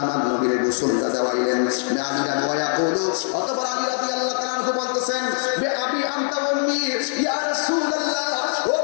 আমার নবীরে গোসলটা দেওয়াইলেন, আলী রাদিয়াল্লাহু অতঃপর আলী রাদিয়াল্লাহু তাআলা আনহু বলতেছেন বে আবি আনতা উম্মি ইয়া রাসূলুল্লাহ, ও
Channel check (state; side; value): silent; right; 59 dB below the other